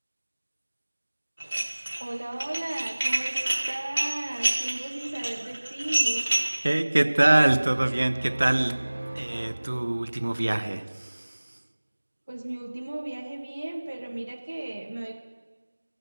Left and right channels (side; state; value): both; inverted; correlation -1.00